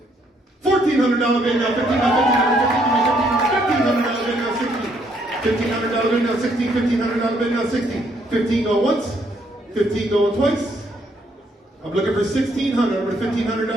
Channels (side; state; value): both; normal; correlation 0.70